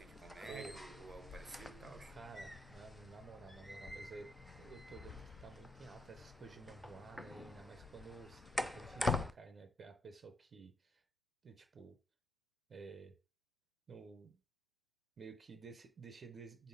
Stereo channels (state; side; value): normal; both; correlation 0.79